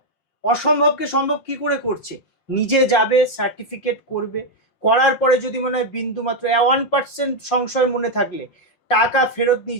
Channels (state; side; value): late; right; 5.6 ms